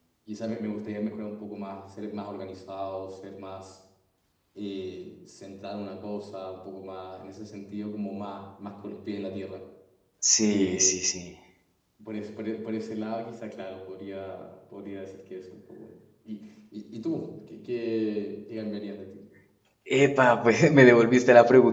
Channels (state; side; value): identical; both; correlation 1.00